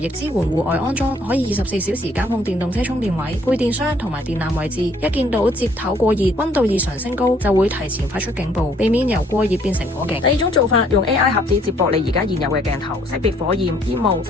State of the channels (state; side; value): normal; both; correlation 0.63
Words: 支援戶外安裝，可以24小時監控電動車充電位、配電箱同埋電纜位置。一見到接頭過熱、溫度異常升高，就會提前發出警報，避免由過熱變成火警。第二種做法，用 AI 盒子接駁你而家現有嘅鏡頭，識別火焰、煙霧，